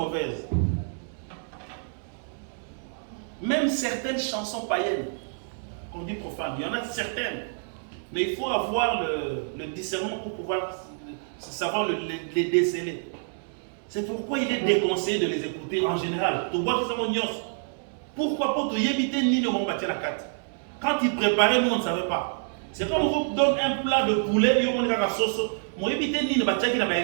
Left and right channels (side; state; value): left; silent; digital silence